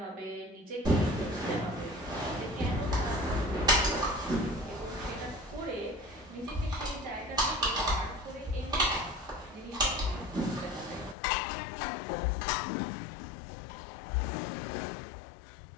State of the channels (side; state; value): right; drops out; at 11.2 s